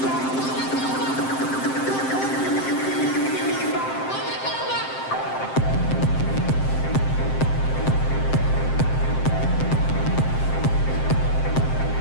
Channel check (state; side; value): late; right; 7.6 ms